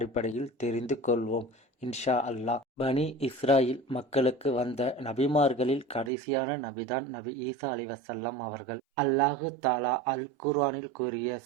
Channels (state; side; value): drops out; left; at 6.1 s